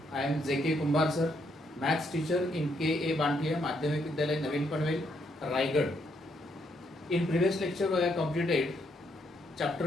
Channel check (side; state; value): both; normal; correlation 0.74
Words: I am J.K. Kumbar sir, maths teacher in K.A. Bantiya Madhyamik Vidyalaya Navin Panvel, Raigad. In previous lecture, we have completed